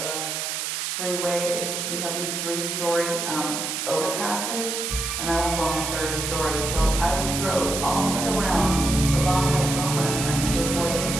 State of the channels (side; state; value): right; noise; hiss, 3 dB below the sound